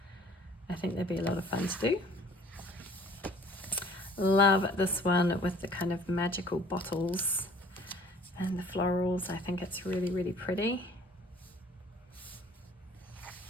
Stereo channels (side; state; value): both; normal; correlation 0.53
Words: I think they'd be a lot of fun to do. Love this one with the kind of magical bottles and the florals. I think it's really, really pretty.